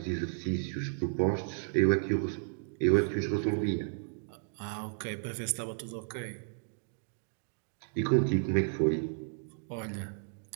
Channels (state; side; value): silent; left; digital silence